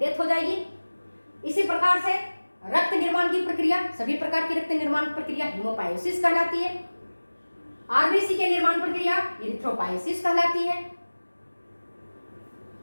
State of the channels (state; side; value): inverted; both; correlation -1.00